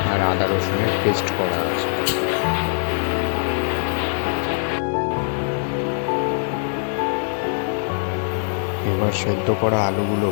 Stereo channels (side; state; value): right; silent; digital silence